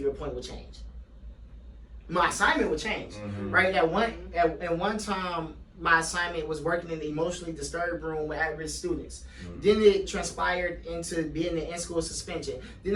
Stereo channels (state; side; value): identical; both; correlation 1.00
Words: point, will change. My assignment would change, right? At one time, my assignment was working in the emotionally disturbed room with at-risk students. Then it transpired into being the in-school suspension. Then